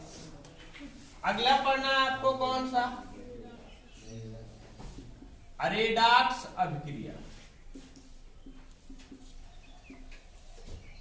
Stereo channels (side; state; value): both; identical; correlation 1.00